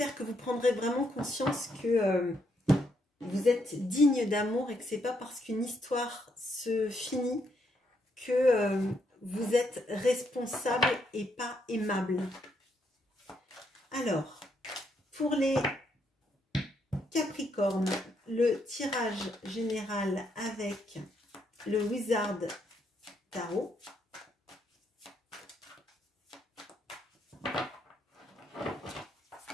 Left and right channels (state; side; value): normal; both; correlation 0.76